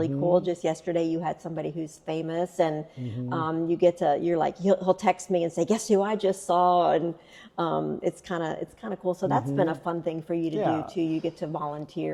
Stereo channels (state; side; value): identical; both; correlation 1.00